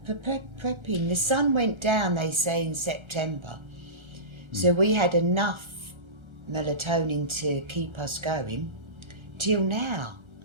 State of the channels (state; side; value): late; left; 1.3 ms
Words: prepping. The sun went down, they say, in September, so we had enough melatonin to keep us going till now.